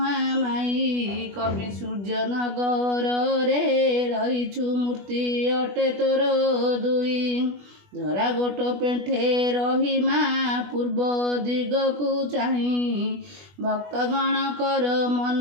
कवि सूर्य नगर रे रहिछु मूर्ति अटे तोर दुई धरा गोट पेंठे रही मा पूर्व दिगकु चाही भक्तगण कर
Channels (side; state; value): left; late; 20 ms